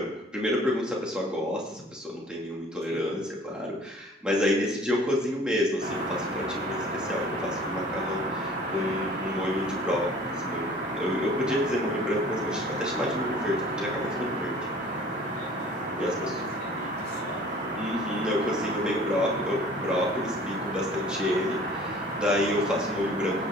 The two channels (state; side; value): normal; both; correlation 0.49